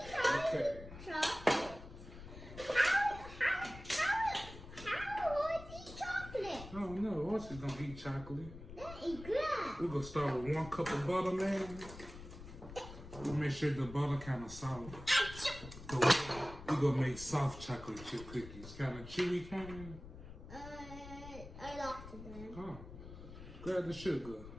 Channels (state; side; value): noise; left; rumble, 14 dB below the sound